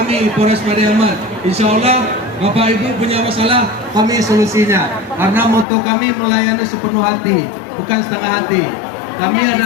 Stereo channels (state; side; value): drops out; right; at 5.7 s